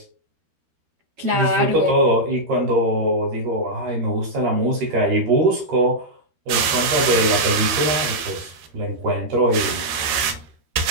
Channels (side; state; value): left; late; 13 ms